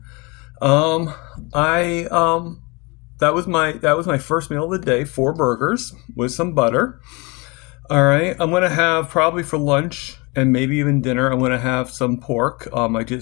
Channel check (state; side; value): quieter; right; 27.4 dB